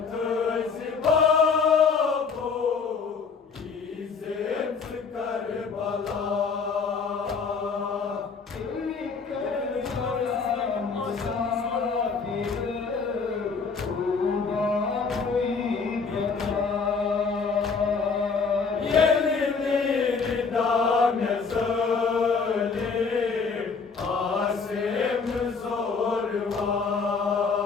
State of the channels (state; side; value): quieter; right; 5.2 dB